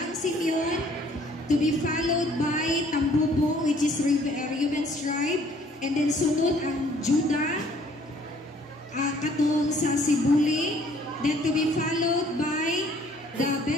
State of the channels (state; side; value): normal; both; correlation 0.59